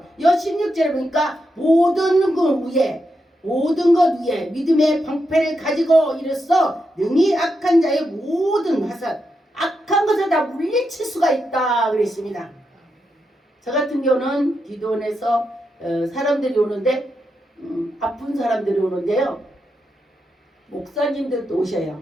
여 16절에 보니까 모든 것 위에 믿음의 방패를 가지고 이르서 능히 악한 자의 모든 화살 악한 것을 다 물리칠 수가 있다 그랬습니다. 저 같은 경우는 기도원에서 사람들이 오는데 아픈 사람들이 오는데요. 목사님들도 오셔요.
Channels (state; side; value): normal; both; correlation 0.85